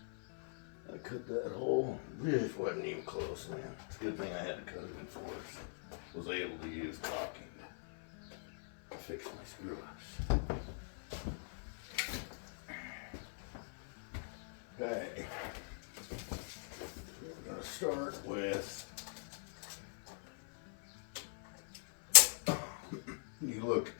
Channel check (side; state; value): right; silent; 50 dB below the other